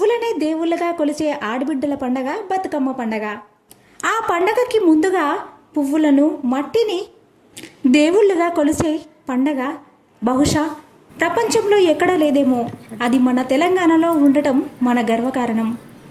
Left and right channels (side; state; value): both; identical; correlation 1.00